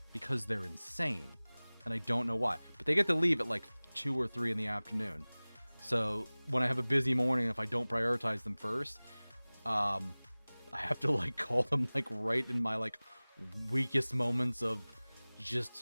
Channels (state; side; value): inverted; both; correlation -1.00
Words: because they're insane. And I don't know why. But they get to leave at like 2 or 3 in the afternoon. So when I have a busy morning, if I don't prioritize them first, I have to like call them like right in my like weakest moments of